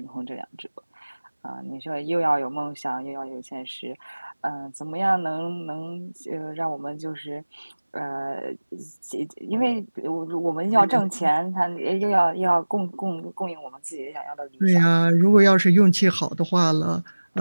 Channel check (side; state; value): both; inverted; correlation -1.00